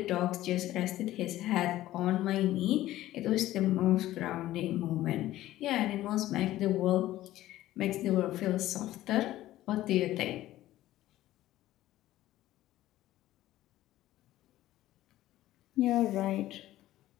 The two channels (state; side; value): quieter; right; 14.9 dB